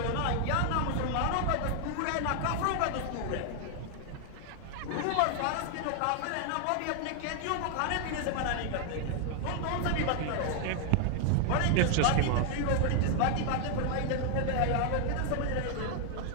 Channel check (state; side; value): different; both; correlation 0.00